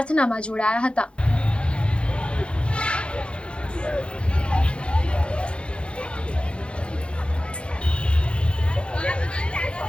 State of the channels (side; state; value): right; late; 0.057 ms